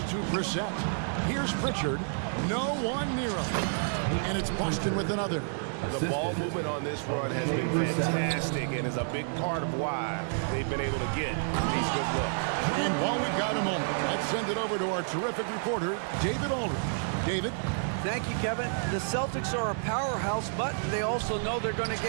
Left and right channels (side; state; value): left; silent; 58 dB below the other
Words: to Brissett. Here's Pritchard. No one near him. And it's Boston with another. The ball movement on this run has been fantastic and is a big part of why they've been able to get these good looks. And while we've got a moment, let's send it over to our terrific reporter, David Aldridge. David? Thank you, Kevin. The Celtics are a powerhouse, but they also know they're going to